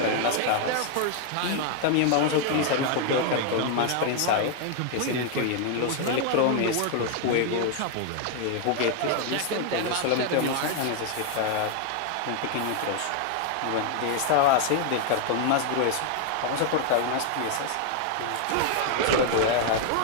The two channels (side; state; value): both; different; correlation 0.00